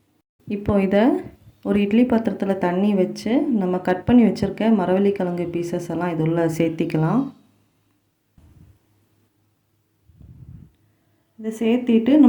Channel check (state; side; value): identical; both; correlation 1.00